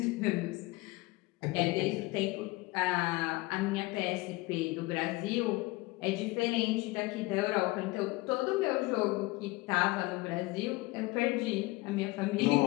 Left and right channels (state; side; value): quieter; right; 21.9 dB